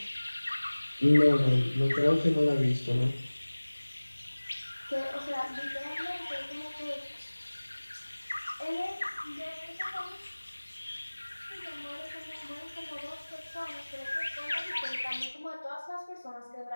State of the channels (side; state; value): both; inverted; correlation -1.00